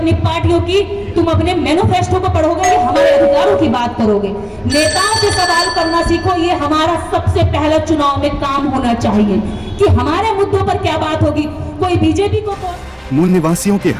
पार्टियों की, तुम अपने मैनिफेस्टो को पढ़ोगे या हमारे अधिकारों की बात करोगे। नेताओं से सवाल करना सीखो, ये हमारा सबसे पहला चुनाव में काम होना चाहिए कि हमारे मुद्दों पर क्या बात होगी। कोई बीजेपी को मूल निवासियों के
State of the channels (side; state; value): both; identical; correlation 1.00